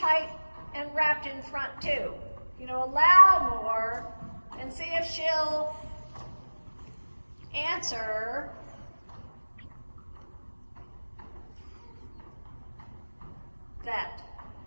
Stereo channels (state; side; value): inverted; both; correlation -1.00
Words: and wrapped in front too. You know, allow more and see if she'll answer that.